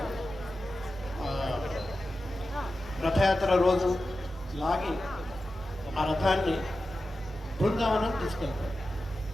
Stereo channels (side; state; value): both; normal; correlation 0.92